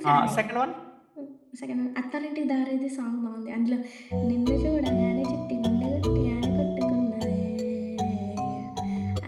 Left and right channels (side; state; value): both; identical; correlation 1.00